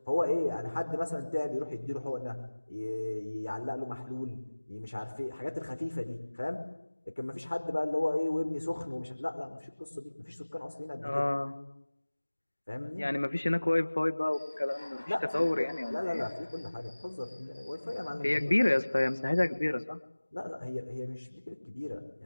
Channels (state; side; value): inverted; both; correlation -1.00